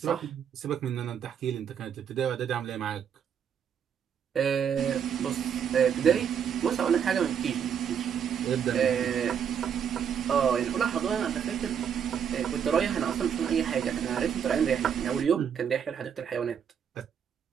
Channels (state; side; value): quieter; left; 8.0 dB